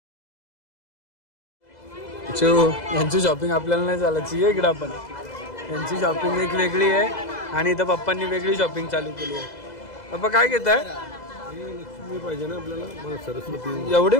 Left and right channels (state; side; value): late; right; 2.0 ms